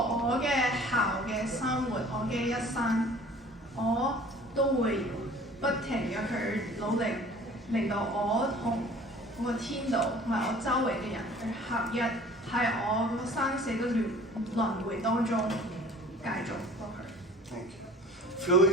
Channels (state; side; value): normal; both; correlation 0.48